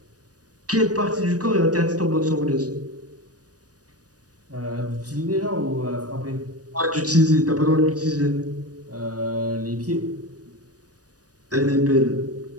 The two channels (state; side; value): late; left; 0.68 ms